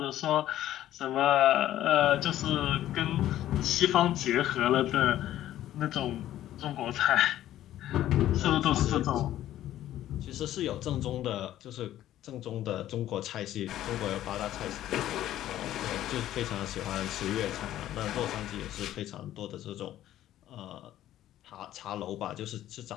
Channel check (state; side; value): quieter; right; 13.0 dB